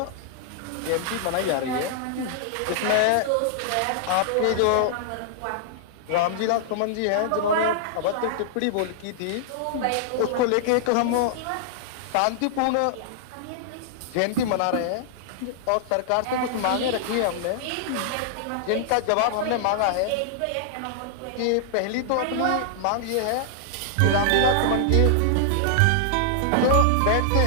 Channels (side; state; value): both; different; correlation -0.01